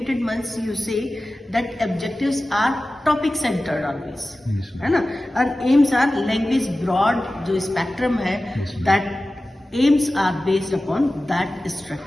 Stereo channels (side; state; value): both; normal; correlation 0.96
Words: means you say that objectives are topic centered always, है ना? और aims are language broad जो spectrum है, that aims are based upon that